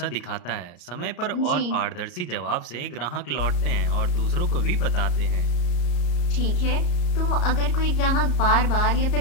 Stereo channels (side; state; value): right; late; 34 ms